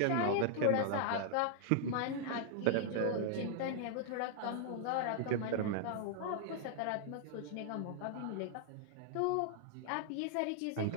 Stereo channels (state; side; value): different; both; correlation -0.01